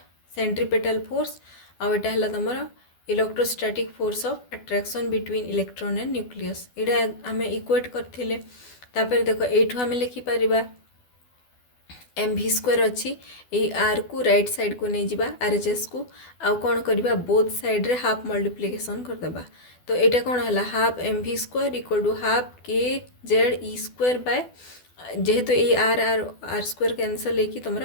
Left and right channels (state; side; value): late; right; 12 ms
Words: सेंट्रीपेटल फोर्स आ एटा हला तमर electrostatic force of attraction between electron and nucleus. एटा आमे इक्वेट करथिले। तापर देखो, एठू आमे लिखि परिबा mv² अच्छी आर को राइट साइड को नहीं जावा RHS को आउ कौन करबा बोथ साइड रे हाफ मल्टीप्लिकेशन कर देबा। तो एटा कौन हला half mv² equal to half kz² by जेहेतु ए आर स्क्वायर कैंसल लेकी